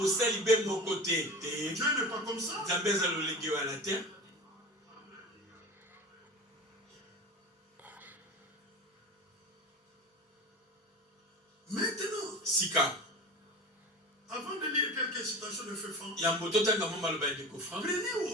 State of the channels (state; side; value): normal; both; correlation 0.33